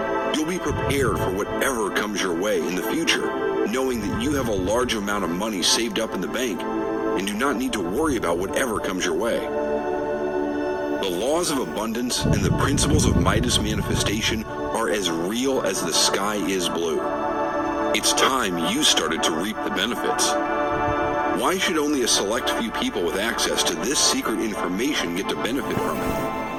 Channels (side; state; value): both; identical; correlation 1.00